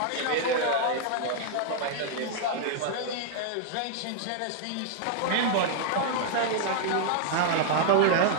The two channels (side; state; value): both; different; correlation -0.01